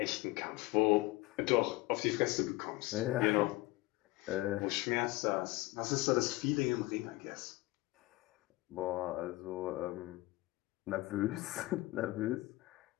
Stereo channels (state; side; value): quieter; right; 19.7 dB